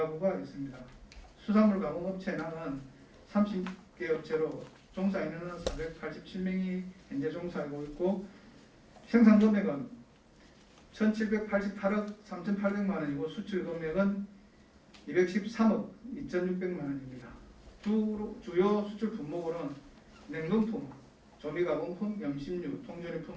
있습니다. 수산물 가공업체 현황은 30개 업체로 종사 인원은 487명이 현재 종사하고 있고 생산 금액은 1,788억 3,800만 원이고 수출 금액은 213억 2,600만 원입니다. 주요 수출 품목으로는 냉동품, 조미가공품, 염심류,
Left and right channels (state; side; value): identical; both; correlation 1.00